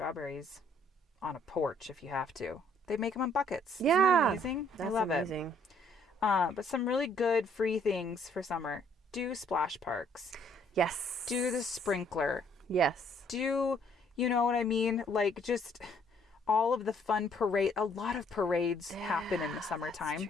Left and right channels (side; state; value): both; normal; correlation 0.64